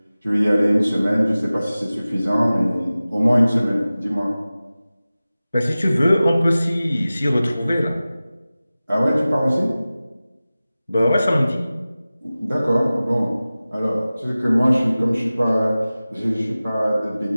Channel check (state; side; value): inverted; both; correlation -0.97